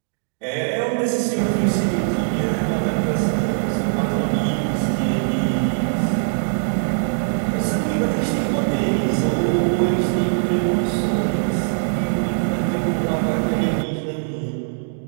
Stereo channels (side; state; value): left; silent; digital silence